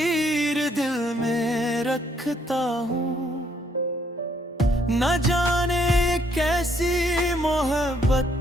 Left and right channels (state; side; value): normal; both; correlation 0.69